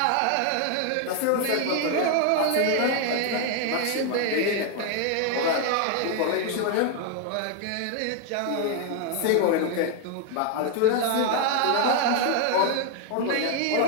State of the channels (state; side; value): different; both; correlation 0.00